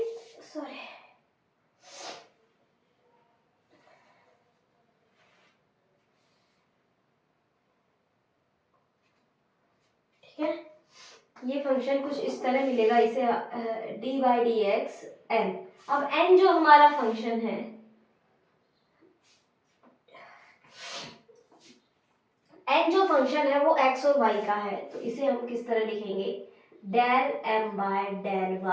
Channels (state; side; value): identical; both; correlation 1.00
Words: सॉरी, ठीक है, ये फंक्शन कुछ इस तरह मिलेगा, इसे D by D X N. अब एन जो हमारा फंक्शन है, एन जो फंक्शन है वो एक्स और वाई का है, तो इसे हम किस तरह लिखेंगे, del M by del